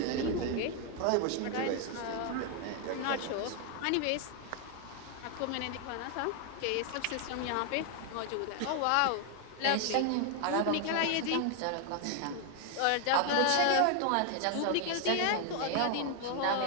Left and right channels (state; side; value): different; both; correlation 0.00